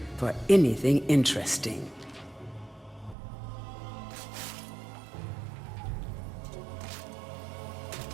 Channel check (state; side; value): drops out; left; at 3.2 s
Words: for anything interesting.